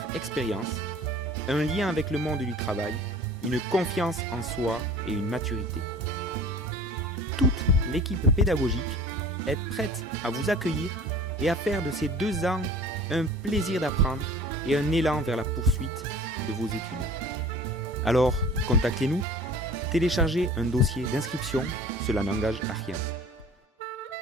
expérience, un lien avec le monde du travail, une confiance en soi et une maturité. Toute l'équipe pédagogique est prête à vous accueillir et à faire de ces 2 ans un plaisir d'apprendre et un élan vers la poursuite de vos études. Alors, contactez-nous, téléchargez un dossier d'inscription, cela n'engage à rien.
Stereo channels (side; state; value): both; normal; correlation 0.44